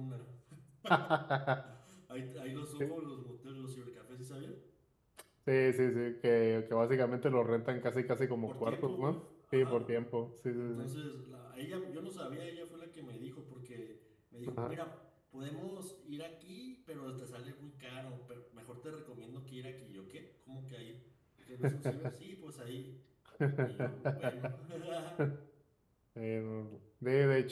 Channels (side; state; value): both; identical; correlation 1.00